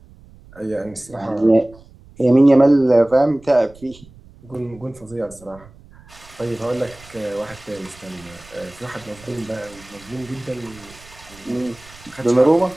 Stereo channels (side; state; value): right; noise; rumble, 23 dB below the sound